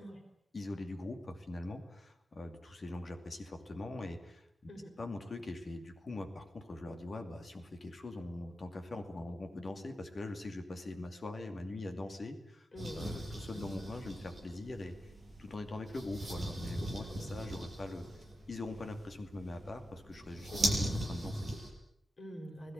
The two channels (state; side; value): normal; both; correlation 0.90